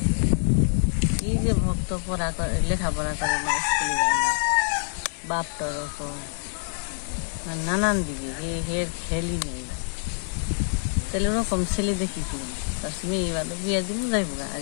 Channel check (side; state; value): right; silent; 60 dB below the other